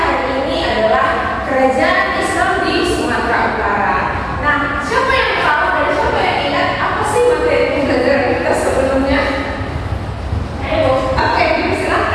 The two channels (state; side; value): identical; both; correlation 1.00